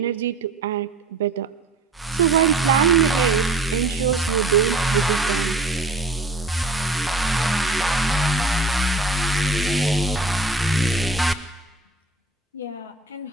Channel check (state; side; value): quieter; left; 3.1 dB